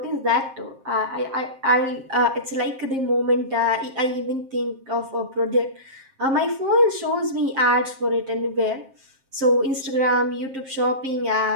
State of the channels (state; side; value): late; left; 7.5 ms